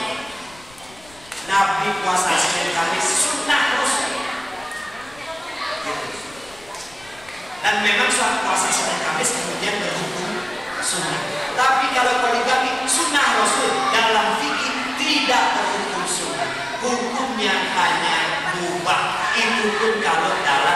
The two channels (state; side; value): noise; left; rumble, 25 dB below the sound